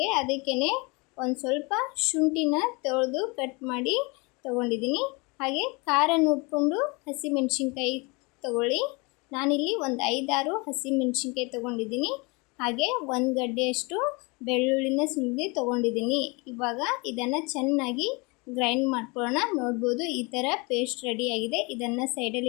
ಅದಕ್ಕೇನೆ ಒಂದು ಸ್ವಲ್ಪ ಶುಂಠಿನ ತೊಳೆದು ಕಟ್ ಮಾಡಿ ತಗೊಂಡಿದ್ದೀನಿ। ಹಾಗೆ ಖಾರ ನೋಡಿಕೊಂಡು ಹಸಿಮೆಣಸಿನಕಾಯಿ ತಗೊಳ್ಳಿ। ನಾನಿಲ್ಲಿ ಒಂದು 5-6 ಹಸಿಮೆಣಸಿನಕಾಯಿ ತಗೊಂಡಿದ್ದೀನಿ। ಹಾಗೆ ಒಂದು ಗಡ್ಡೆಯಷ್ಟು ಬೆಳ್ಳುಳ್ಳಿನ ಸುಲಿದು ತಗೊಂಡಿದ್ದೀನಿ। ಇವಾಗ ಇದನ್ನು ಚೆನ್ನಾಗಿ ಗ್ರೈಂಡ್ ಮಾಡ್ಕೊಳ್ಳೋಣ। ನೋಡ್ಬೋದು ಈ ಥರ ಪೇಸ್ಟ್ ರೆಡಿ ಆಗಿದೆ। ಇದನ್ನು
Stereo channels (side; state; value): right; quieter; 28.0 dB